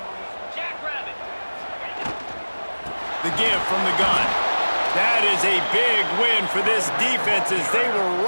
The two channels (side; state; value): both; inverted; correlation -1.00